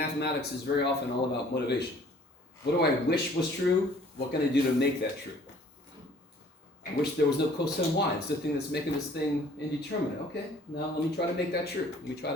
is very often all about motivation. What do I wish was true? What can I do to make that true? I wish there was no cosine y. It's the thing that's making this thing indeterminate. Okay, now let me try to make that true. Let me try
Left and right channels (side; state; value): both; normal; correlation 0.55